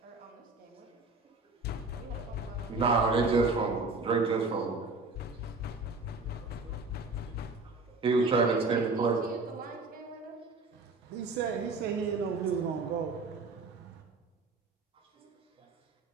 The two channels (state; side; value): quieter; left; 3.5 dB